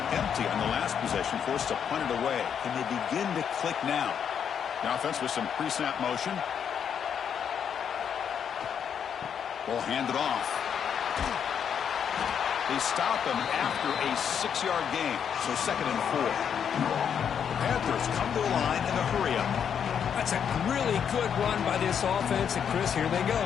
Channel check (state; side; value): quieter; right; 7.9 dB